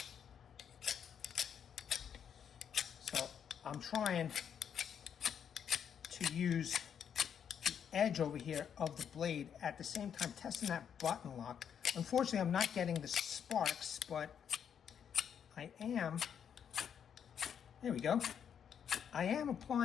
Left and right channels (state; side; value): quieter; right; 8.1 dB